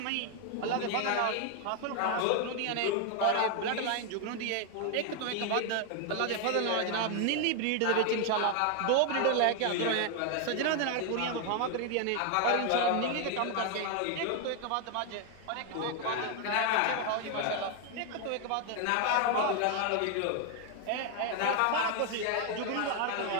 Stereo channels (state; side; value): different; both; correlation 0.00